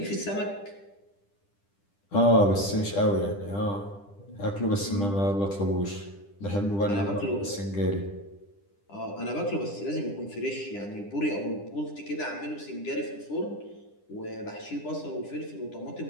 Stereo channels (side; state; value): right; late; 10 ms